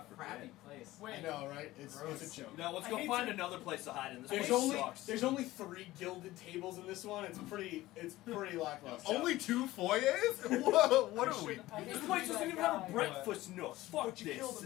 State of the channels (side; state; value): right; quieter; 17.2 dB